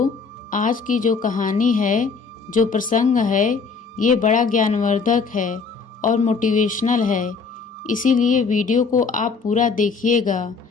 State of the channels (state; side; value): quieter; right; 5.0 dB